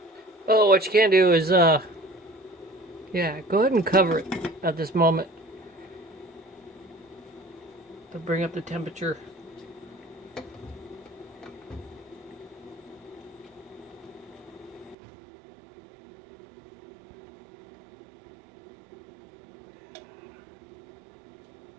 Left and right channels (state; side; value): drops out; left; at 15.0 s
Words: Oh, what you can do is, yeah, go ahead and cover it at this moment to bring up the temperature.